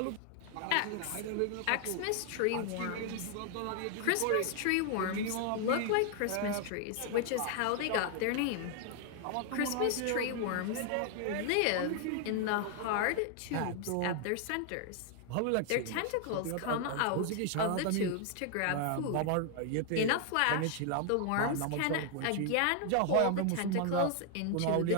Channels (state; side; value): different; both; correlation 0.00